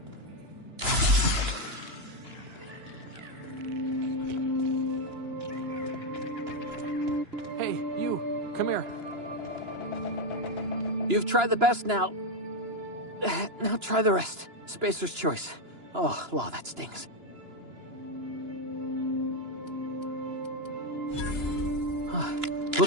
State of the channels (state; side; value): late; left; 2.9 ms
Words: Hey, you, come here. You've tried the best now. Now try the rest. Spacer's choice. Oh, law, that stings.